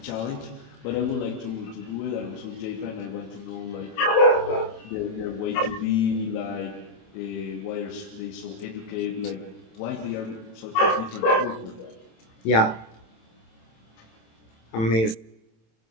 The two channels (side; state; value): right; late; 27 ms